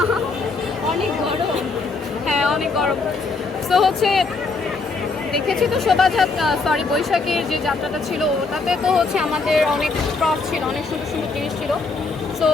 অনেক গরম, হ্যাঁ অনেক গরম। তো হচ্ছে দেখেছি তো বৈশাখীর যে যাত্রাটা ছিল ওটাতে তো হচ্ছে আমাদের অনেক প্রপ ছিল, অনেক সুন্দর সুন্দর জিনিস ছিল। সো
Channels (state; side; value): quieter; right; 4.0 dB